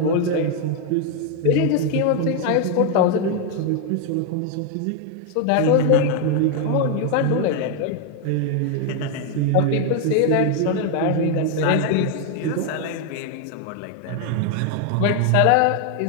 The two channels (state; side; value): different; both; correlation 0.01